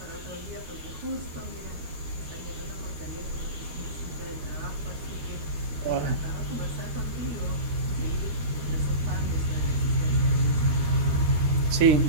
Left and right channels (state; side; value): late; left; 13 ms